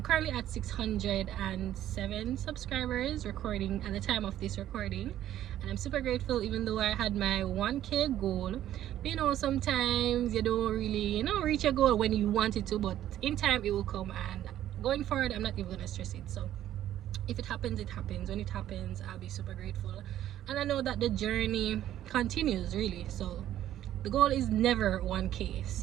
currently at 607 subscribers recording at the time of this recording, and I'm super grateful, even though I had my 1K goal. But you know, sometimes you don't really, you know, reach your goal when you want it to, but in time it will come, and going forward I'm not even gonna stress it. So if it happens, it happens. When it happens, I'll be super grateful, and I know that the journey continues really. So the goal is never 1K,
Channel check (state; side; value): quieter; left; 12.2 dB